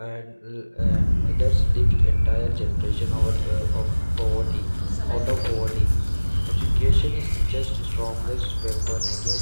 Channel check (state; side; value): inverted; both; correlation -1.00